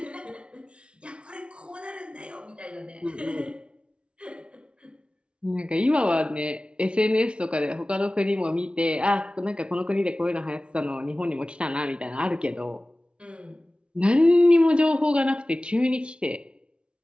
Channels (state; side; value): late; left; 0.058 ms